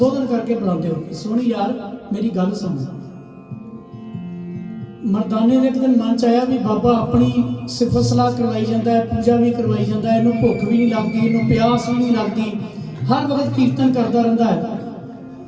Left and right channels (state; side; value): identical; both; correlation 1.00